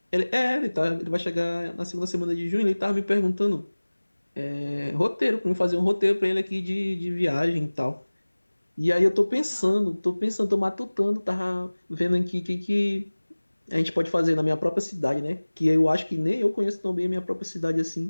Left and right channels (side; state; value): both; inverted; correlation -1.00